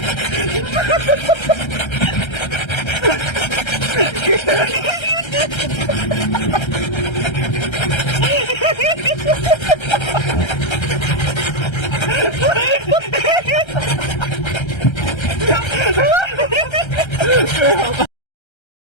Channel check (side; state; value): right; late; 1.3 ms